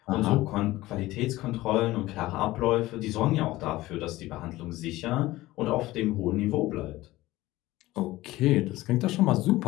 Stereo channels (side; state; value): right; quieter; 17.7 dB